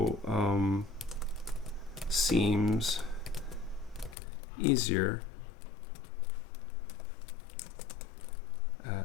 seems easier at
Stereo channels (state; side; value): drops out; right; at 4.2 s